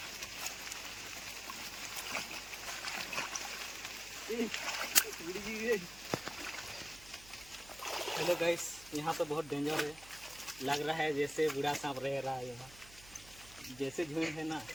हेलो गाइस यहाँ तो बहुत डेंजर है, लग रहा है जैसे बूढ़ा सांप रह रहा है यहाँ, जैसे झुंड है ना।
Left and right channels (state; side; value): noise; right; hum, 19 dB below the sound